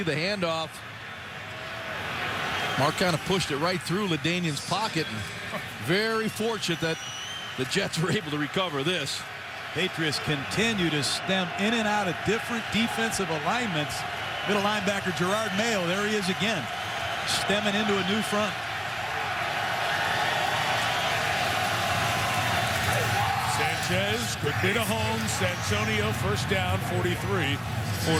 the handoff. Mark kind of pushed it right through LaDainian's pocket. And very fortunate that the Jets were able to recover this. Patriots continue to stem in and out of different defensive alignments. Middle linebacker Gerard Mayo, there he is again, stemming into a new front. Sanchez quickly to Holmes. Santonio first down, 43 for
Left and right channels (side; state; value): both; identical; correlation 1.00